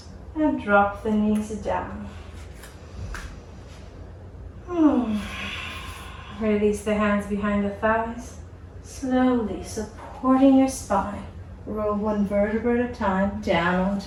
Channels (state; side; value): identical; both; correlation 1.00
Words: and drop the knees down. Release the hands behind the thighs, slowly supporting your spine. Roll one vertebra at a time down